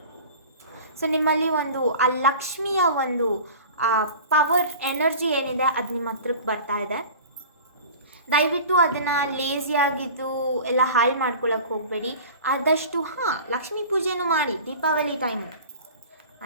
ಸೊ ನಿಮ್ಮಲ್ಲಿ ಒಂದು ಆ ಲಕ್ಷ್ಮಿಯ ಒಂದು ಪವರ್, ಎನರ್ಜಿ ಏನಿದೆ ಅದು ನಿಮ್ಮ ಹತ್ರಕ್ಕೆ ಬರ್ತಾ ಇದೆ. ದಯವಿಟ್ಟು ಅದನ್ನು ಲೇಸಿಯಾಗಿದ್ದು ಎಲ್ಲ ಹಾಳು ಮಾಡ್ಕೊಳ್ಳೋಕೆ ಹೋಗಬೇಡಿ. ಆದಷ್ಟು ಲಕ್ಷ್ಮೀ ಪೂಜೆನೂ ಮಾಡಿ ದೀಪಾವಳಿ ಟೈಮು,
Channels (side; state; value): both; inverted; correlation -0.39